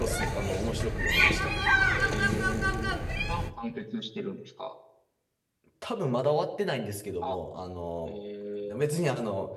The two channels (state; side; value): identical; both; correlation 1.00